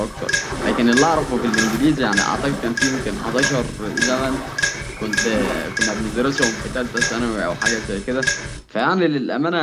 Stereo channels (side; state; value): both; identical; correlation 1.00